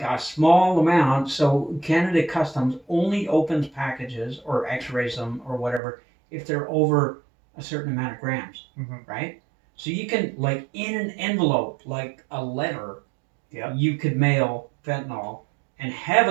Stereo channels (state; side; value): drops out; left; at 5.8 s